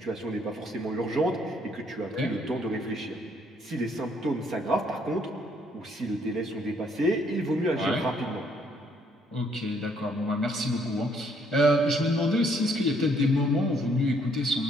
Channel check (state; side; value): normal; both; correlation 0.67